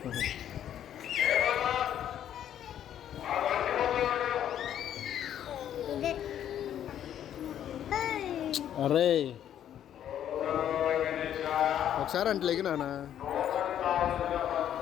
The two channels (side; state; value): right; quieter; 10.4 dB